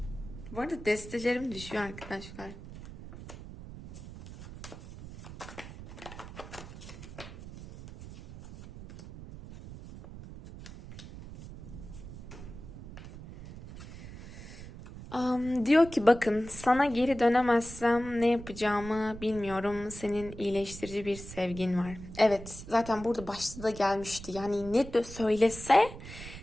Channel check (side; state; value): right; noise; rumble, 13 dB below the sound